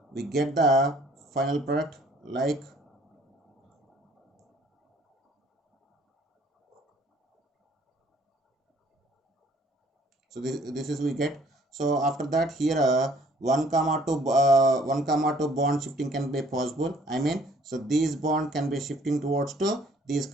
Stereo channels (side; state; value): both; normal; correlation 0.59